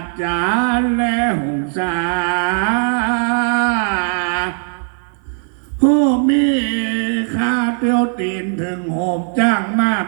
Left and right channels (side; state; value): left; silent; 56 dB below the other